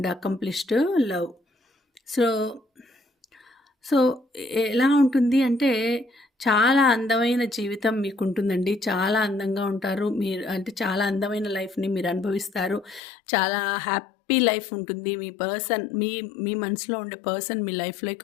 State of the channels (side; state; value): right; drops out; at 13.0 s